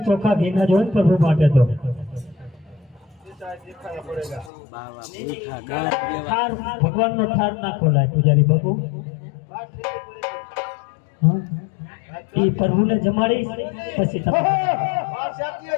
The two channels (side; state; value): right; drops out; at 4.5 s